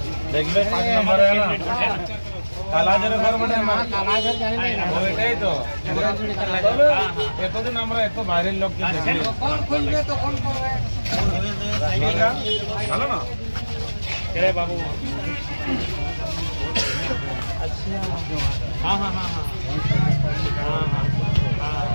দেখবে 5 নম্বরে না কালাজারের ঘর মানে কালাজার জানি না ওইটাই তো এতদিন আমরা এত বাইরের লোককে দেখি কোন খুলবে তো কোন করবে ভালো না রে বাবু আচ্ছা हां हां हां हां हां हां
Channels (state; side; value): inverted; both; correlation -1.00